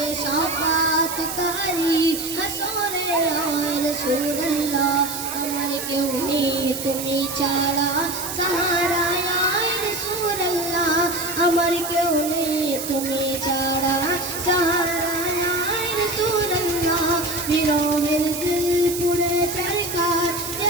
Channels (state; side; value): noise; right; hiss, 6 dB below the sound